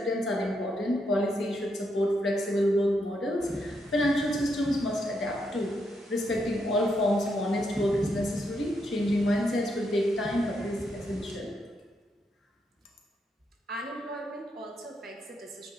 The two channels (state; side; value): normal; both; correlation 0.79